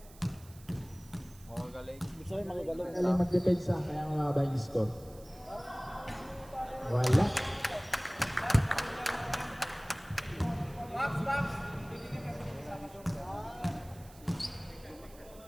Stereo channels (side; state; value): right; noise; hiss, 23 dB below the sound